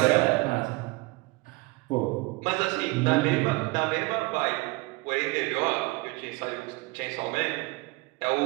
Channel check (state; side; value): quieter; left; 23.3 dB